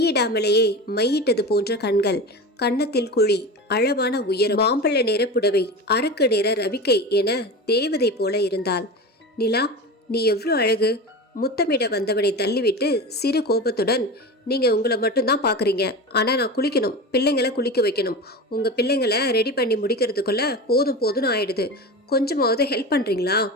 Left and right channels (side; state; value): both; normal; correlation 0.28